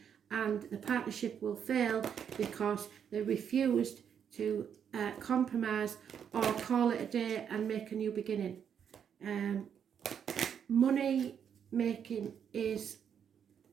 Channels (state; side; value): quieter; left; 8.0 dB